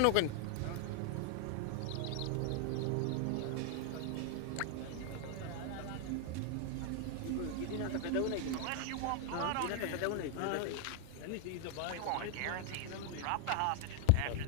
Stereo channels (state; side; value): different; both; correlation 0.00